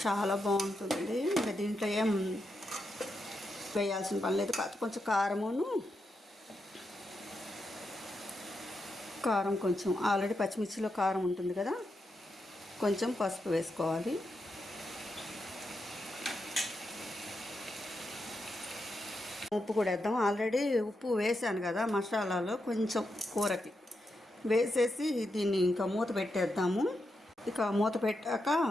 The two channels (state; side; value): normal; both; correlation 0.85